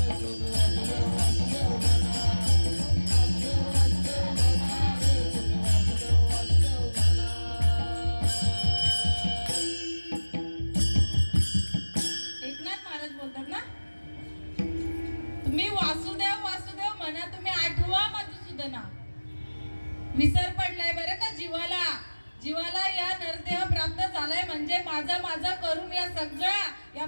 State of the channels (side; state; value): both; inverted; correlation -1.00